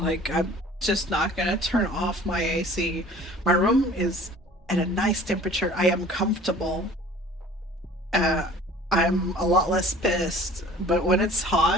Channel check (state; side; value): normal; both; correlation 0.47